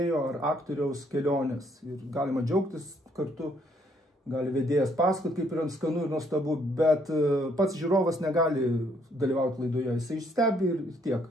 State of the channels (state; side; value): normal; both; correlation 0.68